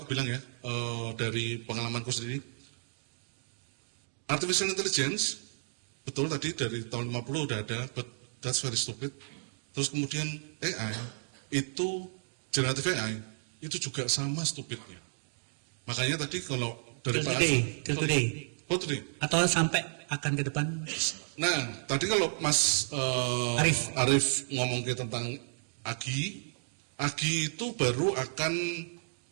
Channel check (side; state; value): left; silent; digital silence